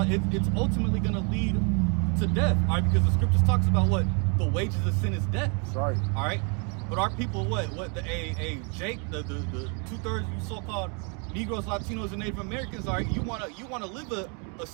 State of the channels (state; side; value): quieter; left; 36.7 dB